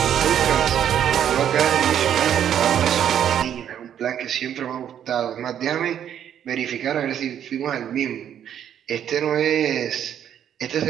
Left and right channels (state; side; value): quieter; left; 9.7 dB